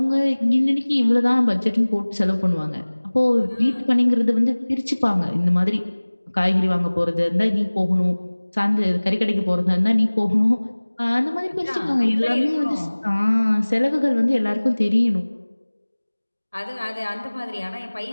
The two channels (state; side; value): inverted; both; correlation -1.00